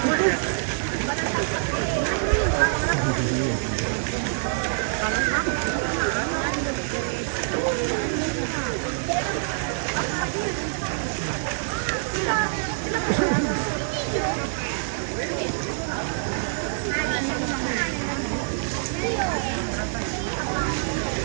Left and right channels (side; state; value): left; silent; digital silence